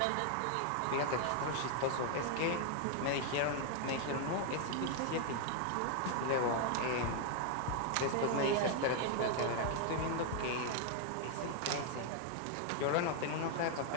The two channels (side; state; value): both; different; correlation 0.00